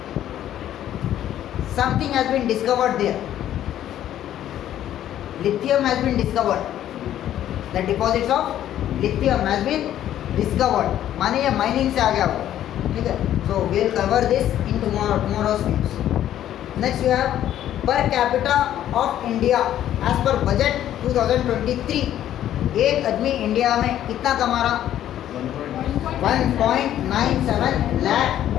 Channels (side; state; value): right; quieter; 11.7 dB